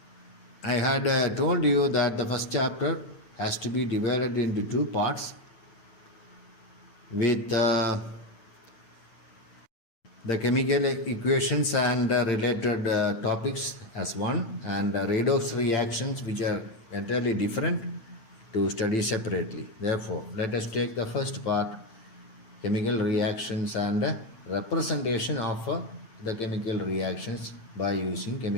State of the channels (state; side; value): late; right; 8.9 ms